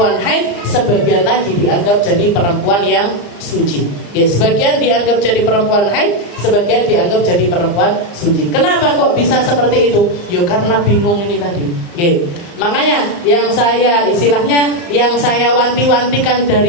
haid, sebagian lagi dianggap jadi perempuan yang suci. Nggih, sebagian dianggap jadi perempuan haid, sebagian dianggap jadi perempuan suci. Kenapa kok bisa seperti itu? Yo karena bingung ini tadi. Nggih. Makanya yang saya wanti-wantikan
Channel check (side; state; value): right; late; 35 ms